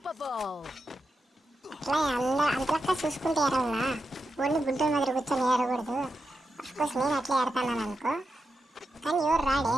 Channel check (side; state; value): both; normal; correlation 0.88